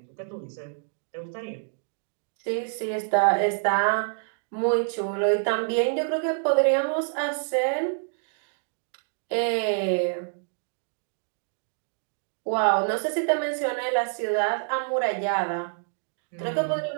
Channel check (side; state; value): left; silent; digital silence